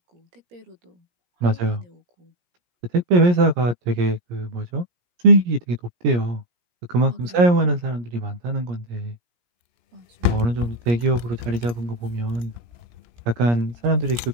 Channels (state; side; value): late; left; 17 ms